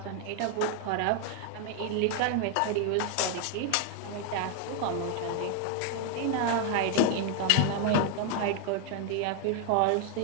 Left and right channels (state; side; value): different; both; correlation 0.01